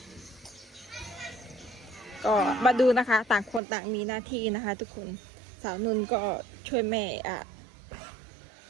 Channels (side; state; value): left; drops out; at 3.6 s